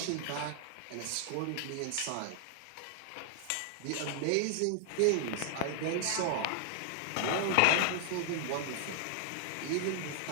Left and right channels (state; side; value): different; both; correlation 0.00